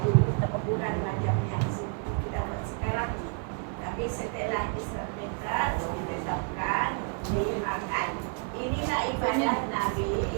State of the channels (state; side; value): quieter; left; 38.6 dB